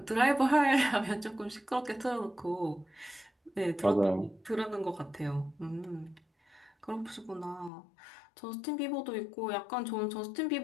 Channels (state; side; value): drops out; right; at 7.7 s